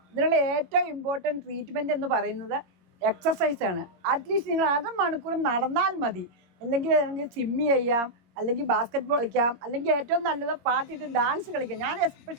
ഇതിനുള്ള ഏറ്റവും ഇമ്പോർട്ടൻറ്റ് ട്രീറ്റ്മെൻറ്റ് എന്ന് പറയുന്നത് എക്സസൈസാണ്. അറ്റ്ലീസ്റ്റ് നിങ്ങൾ അരമണിക്കൂർ നടന്നാൽ മതി. അല്ലെങ്കിൽ സ്വിമ്മി ചെയ്യാം, അല്ലെങ്കിൽ ബാസ്കറ്റ് ബോൾ കളിക്കാം, അല്ലെങ്കിൽ ഏറ്റവും നല്ലത് പാട്ടിട്ട് ഡാൻസ് കളിക്കാം. ഞാൻ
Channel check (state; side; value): late; left; 21 ms